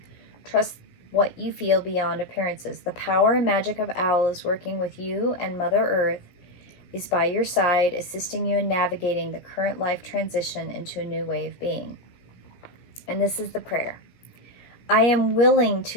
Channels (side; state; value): right; late; 17 ms